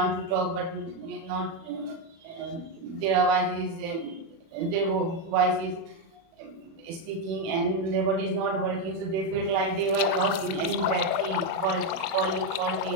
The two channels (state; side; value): late; left; 36 ms